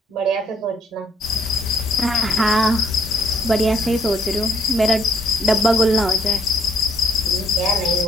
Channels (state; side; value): normal; both; correlation 0.66